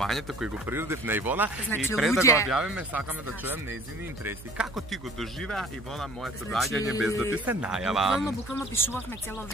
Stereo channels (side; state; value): right; noise; hum, 17 dB below the sound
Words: кој го приредив на Ивона, и пред да го објавиме сакаме да чуем нејзини интереси. Како ти го доживеа, Ивона, моето доаѓање без да ти се најава? Буквално пишувавме цело